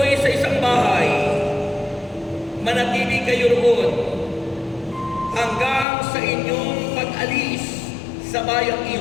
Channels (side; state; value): right; drops out; at 5.9 s